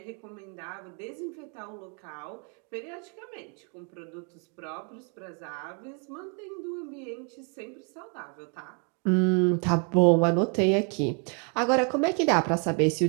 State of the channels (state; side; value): quieter; left; 36.7 dB